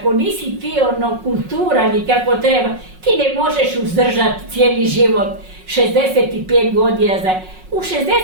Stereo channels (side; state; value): left; late; 5.4 ms